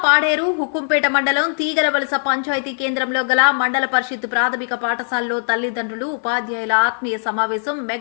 పాడేరు హుకుంపేట మండలం తీగలవలస పంచాయతీ కేంద్రంలో గల మండల పరిషత్ ప్రాథమిక పాఠశాలలో తల్లిదండ్రులు ఉపాధ్యాయుల ఆత్మీయ సమావేశం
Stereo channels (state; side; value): silent; right; digital silence